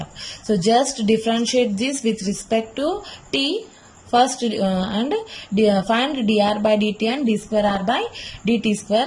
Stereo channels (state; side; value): identical; both; correlation 1.00